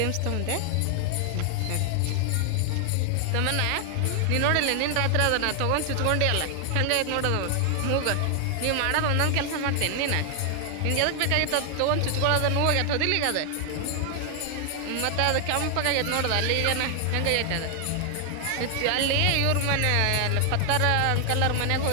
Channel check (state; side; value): different; both; correlation 0.00